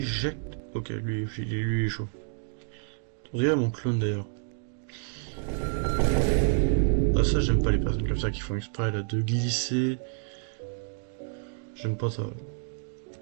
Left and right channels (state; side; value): silent; left; 59 dB below the other